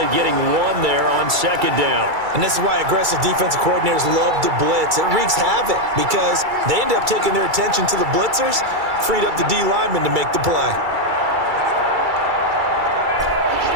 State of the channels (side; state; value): left; late; 2.3 ms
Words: getting 1 there on second down. And this is why aggressive defensive coordinators love to blitz. It wreaks havoc because they end up taking their attention to the blitzers, freed up the D lineman to make the play.